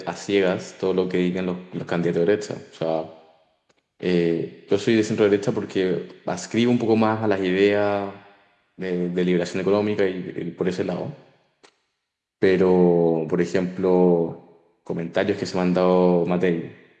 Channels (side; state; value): both; identical; correlation 1.00